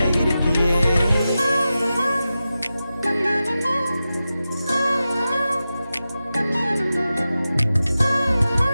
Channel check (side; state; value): both; inverted; correlation -0.93